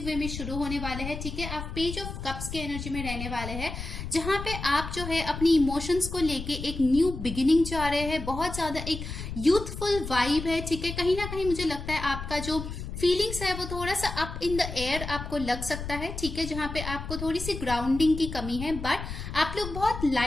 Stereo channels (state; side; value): noise; left; rumble, 7 dB below the sound